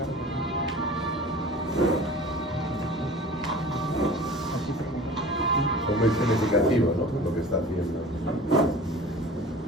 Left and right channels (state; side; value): normal; both; correlation 0.41